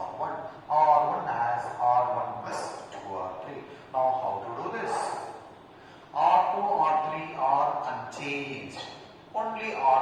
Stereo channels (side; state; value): both; identical; correlation 1.00